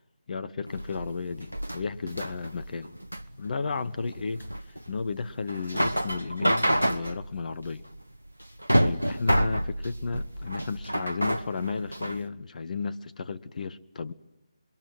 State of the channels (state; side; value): inverted; both; correlation -0.93